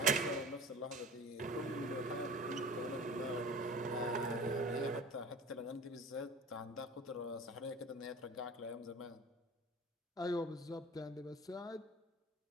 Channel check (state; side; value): normal; both; correlation 0.40